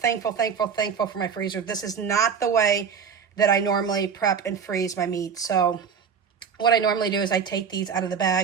for my freezer. This is not the way that I normally prep and freeze my meat. So what I normally do is I take these out of the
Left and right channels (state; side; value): quieter; left; 6.7 dB